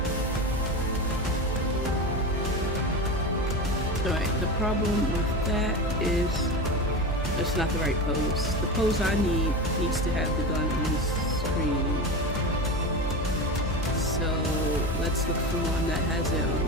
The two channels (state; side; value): normal; both; correlation 0.24